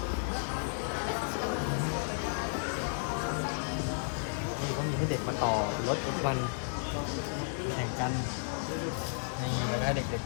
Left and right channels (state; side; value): silent; right; 56 dB below the other